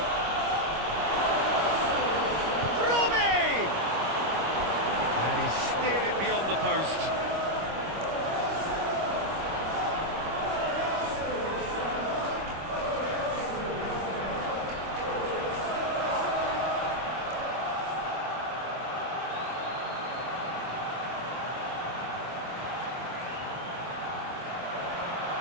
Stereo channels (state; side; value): late; left; 25 ms